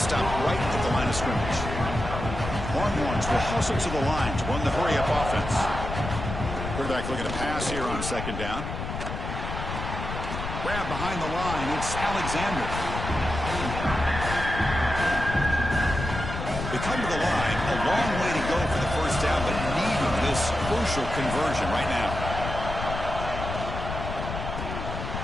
Stop right at the line of scrimmage. Longhorns will hustle to the line to run the hurry-up offense. Quarterback looking to pass here on 2nd down. Grab behind the line. It's Alexander. They come to the line. A long way to go for the first down, but needing this crucial conversion right now.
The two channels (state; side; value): noise; left; rumble, 6 dB below the sound